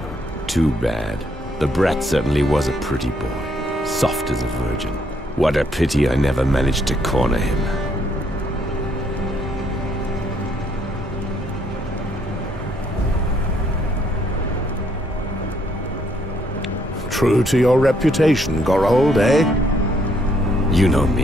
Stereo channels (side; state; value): both; normal; correlation 0.70